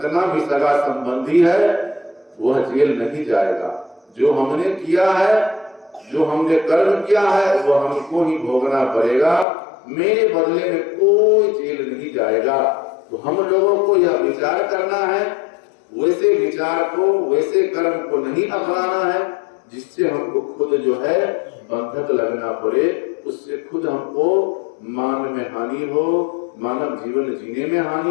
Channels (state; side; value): drops out; right; at 9.5 s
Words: भी सगा संबंधी है वह जेल नहीं जाएगा। जो हमने किया है, जो हमने कर्म किया है, वह हमको ही भोगना पड़ेगा। मेरे बदले में कोई जेल नहीं जाएगा। तो हम लोगों को यह विचार करना है, वैसे विचार को, वैसे कर्म को नहीं अपनाना है जिससे हमको खुद जो है बंधक लगना पड़े, उससे खुद हमको मान में हानि हो, मानव जीवन जीने में